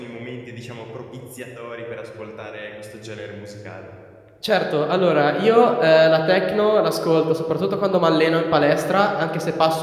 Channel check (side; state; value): both; identical; correlation 1.00